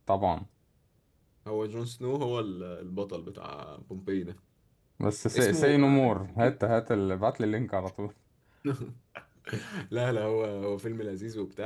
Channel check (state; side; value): identical; both; correlation 1.00